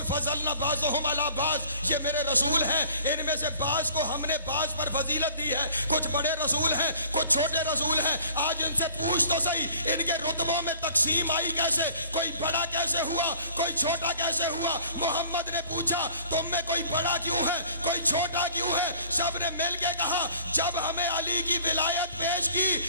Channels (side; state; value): both; inverted; correlation -0.50